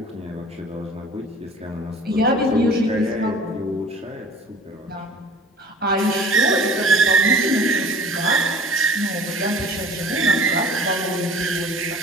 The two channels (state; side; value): normal; both; correlation 0.46